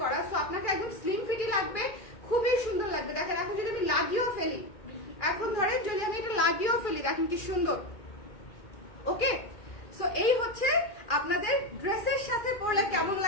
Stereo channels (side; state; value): right; late; 2.4 ms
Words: করা। সো আপনাকে একদম স্লিম ফিটই লাগবে, খুবই সুন্দর লাগবে। দেখেন এখন যদি আমি লাগিয়েও ফেলি, এখন ধরেন যদি আমি এটা লাগিয়েও ফেলি, দেখেন কি সুন্দর। ওকে, সো এই হচ্ছে আপনাদের ড্রেসের সাথে পরলে কেমন